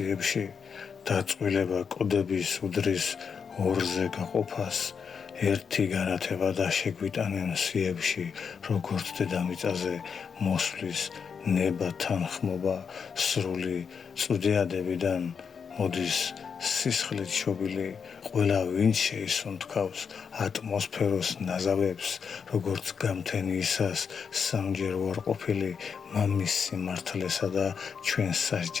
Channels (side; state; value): right; quieter; 6.3 dB